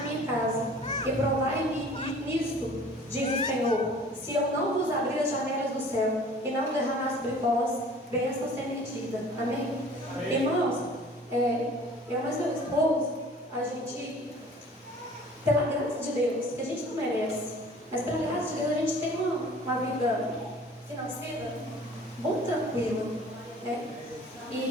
casa. E provai-me nisto, diz o Senhor, se eu não vos abrir as janelas do céu, e não derramar sobre vós bênção sem medida. Amém? Amém. Irmãos, eu mais meu esposo, a gente, pela graça de Deus, que a gente não merece, mas pela graça de Deus a gente tem uma vida financeira muito tranquila, né?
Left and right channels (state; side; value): normal; both; correlation 0.48